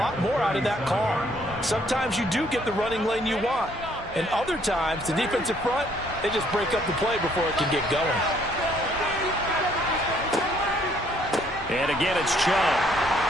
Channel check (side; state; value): both; normal; correlation 0.65